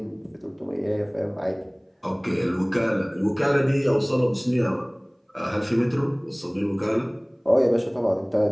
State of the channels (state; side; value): identical; both; correlation 1.00